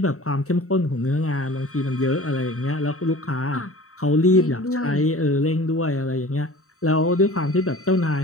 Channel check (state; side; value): late; right; 0.64 ms